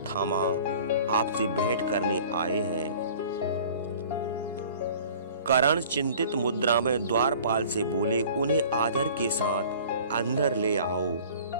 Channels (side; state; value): both; inverted; correlation -0.47